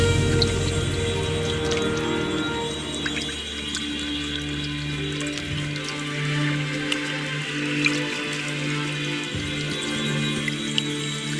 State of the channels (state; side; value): identical; both; correlation 1.00